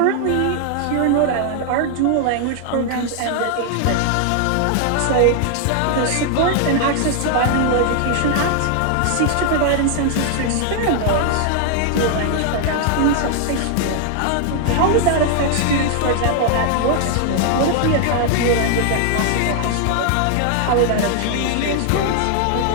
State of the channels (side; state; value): both; different; correlation 0.00